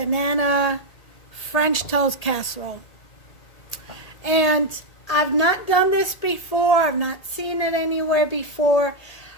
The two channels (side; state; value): right; late; 1.8 ms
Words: French toast casserole. And I've not done this before. I've not seen it anywhere before.